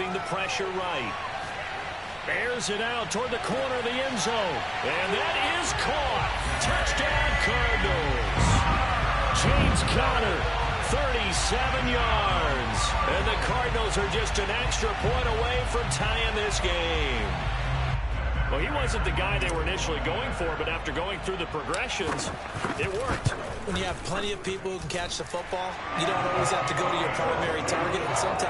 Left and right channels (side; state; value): both; identical; correlation 1.00